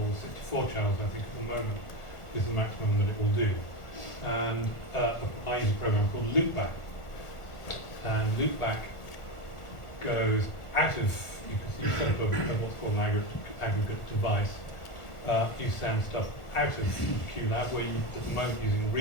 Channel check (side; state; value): right; late; 1.4 ms